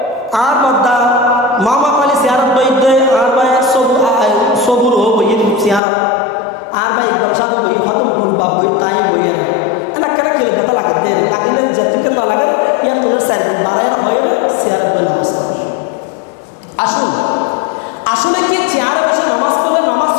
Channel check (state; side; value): drops out; right; at 5.8 s